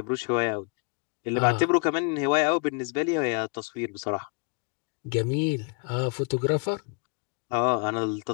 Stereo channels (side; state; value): right; quieter; 35.8 dB